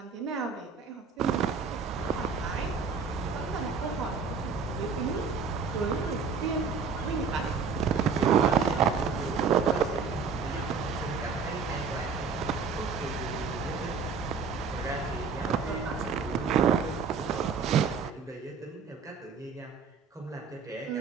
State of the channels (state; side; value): quieter; left; 5.5 dB